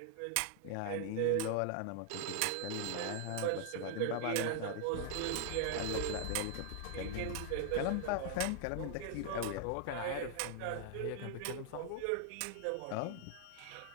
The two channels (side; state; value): both; different; correlation 0.00